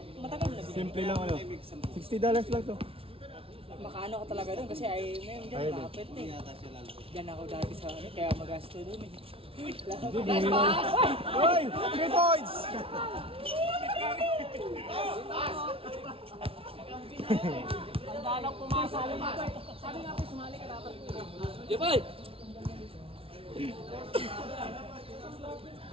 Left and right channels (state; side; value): late; left; 0.26 ms